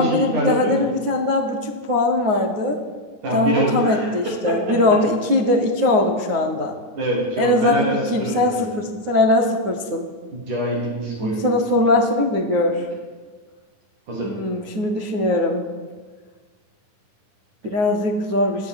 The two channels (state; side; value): late; left; 9.5 ms